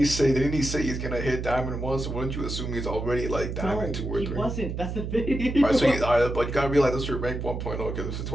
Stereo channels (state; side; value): noise; right; hum, 5 dB below the sound